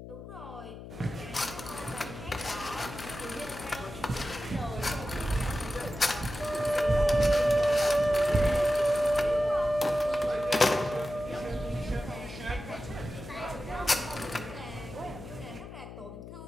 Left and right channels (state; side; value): noise; left; hum, 13 dB below the sound